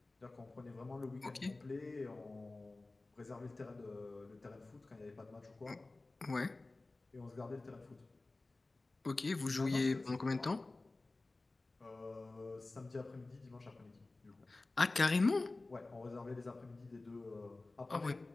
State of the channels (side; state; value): right; quieter; 3.2 dB